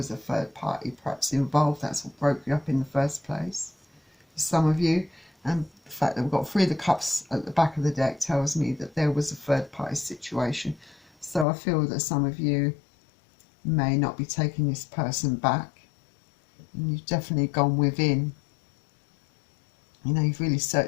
a third party perhaps involved. That's what broke you up in the first place for some of you. And the fact that we've got Three of the Cups at the back of the deck tells me that there was a third party situation. So I feel that some of you may not be taking this person back. And you've definitely gone within. You know, you've really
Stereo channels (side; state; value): right; drops out; at 11.5 s